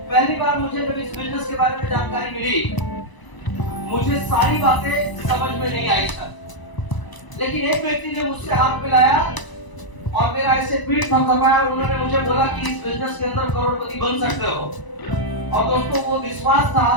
पहली बार मुझे जब इस बिजनेस के बारे में जानकारी मिली, मुझे सारी बातें समझ में नहीं आई सर, लेकिन एक व्यक्ति ने मुझसे हाथ मिलाया और मेरा ऐसे पीठ थपथपाया और उन्होंने मुझे बोला कि इस बिजनेस के अंदर करोड़पति बन सकते हो। और दोस्तों, वो विश्वास था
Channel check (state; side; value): late; right; 1.0 ms